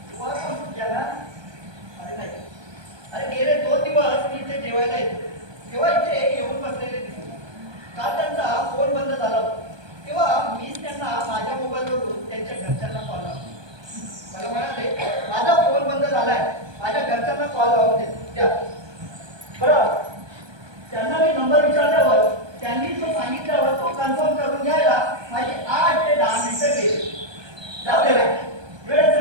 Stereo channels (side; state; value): left; late; 1.2 ms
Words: वर्कआउट केला? अरे नाही. अरे गेले 2 दिवस मी इथे जेवायला येतो तेव्हा इथे येऊन बसलेले दिसले. काल त्यांचा फोन बंद झाला होता. तेव्हा मीच त्यांना माझ्या मोबाईलवरून त्यांच्या घरच्यांना कॉल लावला. मला म्हणाले माझा फोन बंद झालाय, माझ्या घरच्यांना कॉल लावून द्या. बरं त्यांना मी नंबर विचारल्यावर त्यांनी तो सांगितल्यावर तो कन्फर्म करून घ्यायला माझी 8 ते 10 मिनिटं गेली. जाऊ दे रे, वेळेचं